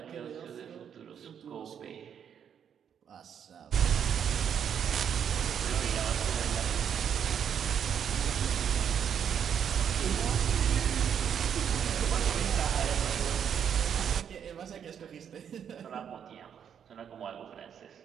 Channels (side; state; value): left; quieter; 8.3 dB